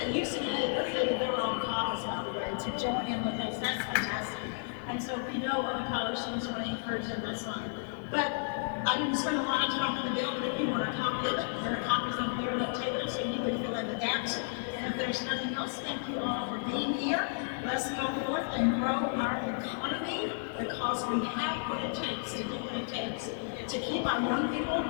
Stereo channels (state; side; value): silent; right; 56 dB below the other